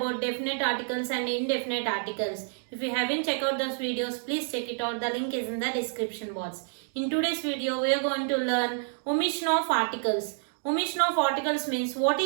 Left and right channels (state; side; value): silent; left; 59 dB below the other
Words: definite articles and indefinite articles. If you haven't checked out those videos, please check it out. The link is in the description box. In today's video, we are going to learn omission of articles. Omission of articles means, what